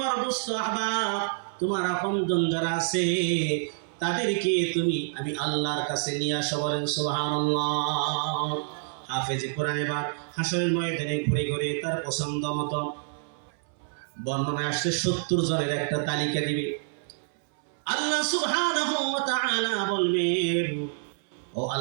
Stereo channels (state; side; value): silent; left; 60 dB below the other